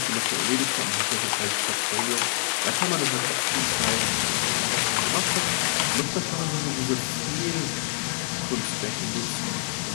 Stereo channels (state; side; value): silent; right; 61 dB below the other